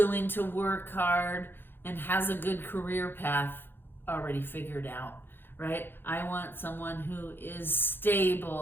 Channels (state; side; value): late; right; 0.10 ms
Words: to work hard, and has a good career path already figured out, right? I want someone who is